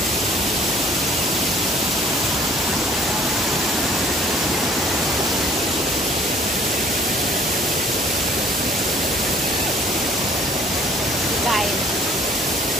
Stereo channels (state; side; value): normal; both; correlation 0.56